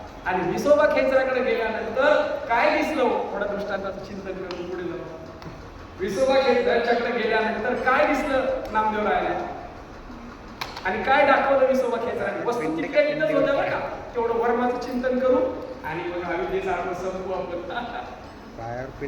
आणि विसोबा खेचराकडे गेल्यानंतर काय दिसलं थोडं दृष्टांताचं चिंतन करून पुढे जाऊ. विसोबा खेचराच्याकडे गेल्यानंतर काय दिसलं नामदेवरायाला आणि काय दाखवलं विसोबा खेचराने. वस्तू तितक्या तिथंच होत्या बरं का. तेवढं वर्माचं चिंतन करू आणि मग अविद्येचा अर्थ संपू आपण. पायावर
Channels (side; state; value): both; identical; correlation 1.00